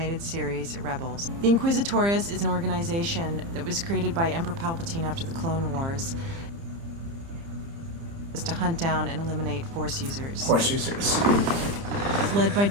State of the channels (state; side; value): late; left; 30 ms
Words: series, Rebels. The Inquisitorius is an organization that was created by Emperor Palpatine after the Clone Wars. Is to hunt down and eliminate Force users. Force users. It's led by